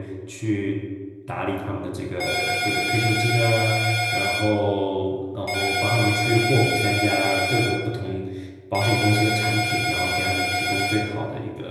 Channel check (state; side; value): identical; both; correlation 1.00